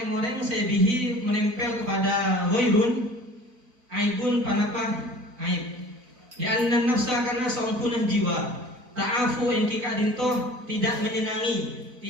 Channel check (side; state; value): left; late; 4.0 ms